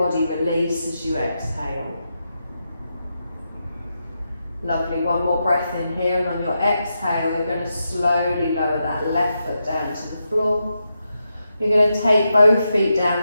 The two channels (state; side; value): inverted; both; correlation -0.86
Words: release as you exhale. Lovely, one more breath in here, and on your exhale, you're going to slowly lower that left foot down to the floor. You're going to take both feet down